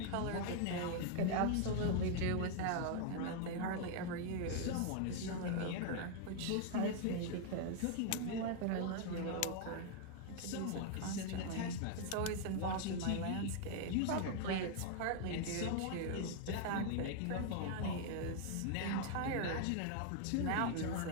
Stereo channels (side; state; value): both; different; correlation 0.00